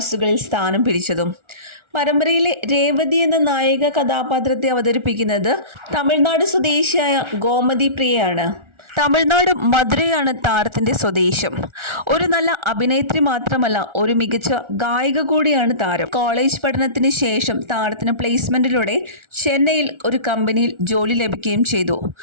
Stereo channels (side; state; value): left; late; 1.4 ms